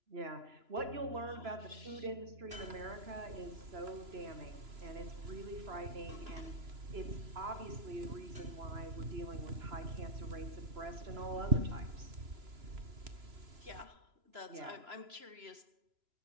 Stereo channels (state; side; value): late; left; 3.0 ms